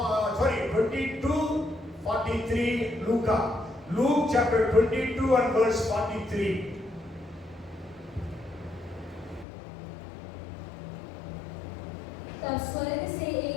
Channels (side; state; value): right; drops out; at 9.5 s